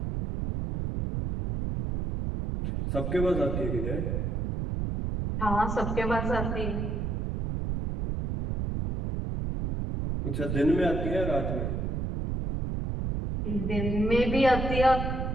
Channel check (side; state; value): right; noise; rumble, 2 dB below the sound